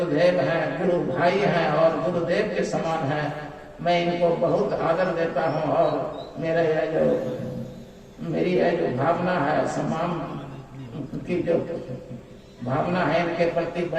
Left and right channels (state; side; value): identical; both; correlation 1.00